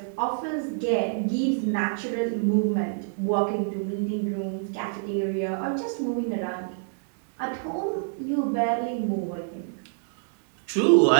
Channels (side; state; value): left; silent; digital silence